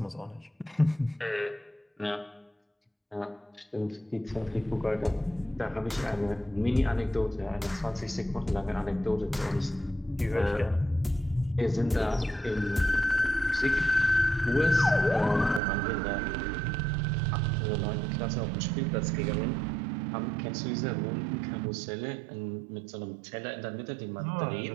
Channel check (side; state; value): left; drops out; at 15.6 s